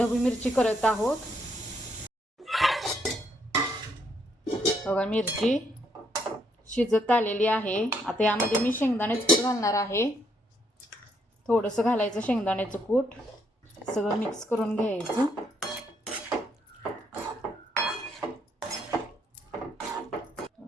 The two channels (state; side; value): normal; both; correlation 0.73